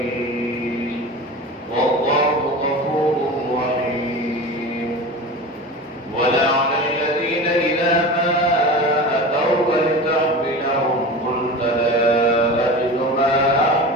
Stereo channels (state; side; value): normal; both; correlation 0.31